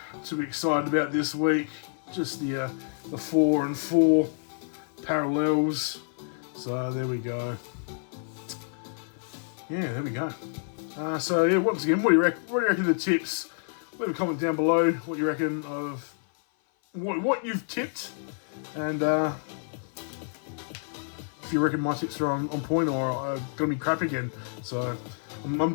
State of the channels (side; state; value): right; silent; 55 dB below the other